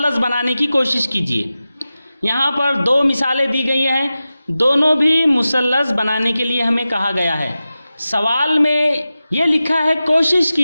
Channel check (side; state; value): both; inverted; correlation -0.94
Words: बनाने की कोशिश कीजिए। यहाँ पर दो मिसालें दी गई हैं, दोनों भी मुसल्लस बनाने के लिए हमें कहा गया है। सवाल में ये लिखा है कोशिश